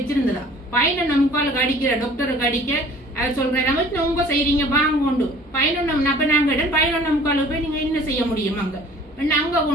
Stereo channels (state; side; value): normal; both; correlation 0.50